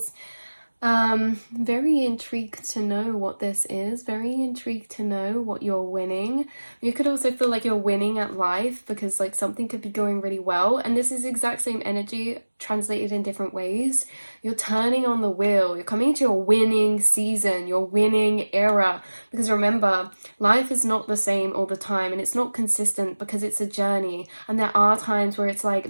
Very intrigued to know what this is, very intrigued to know what you're winning. You could also feel like you're winning at life because like something could be going really well, and this is the exact same energy translated in different ways. You're turning on the wheel, you're coming into your winning season, your winning era, because remember, life is not the same all the time, and it's not consistent because it's a journey, and there are times where it's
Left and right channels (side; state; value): both; inverted; correlation -1.00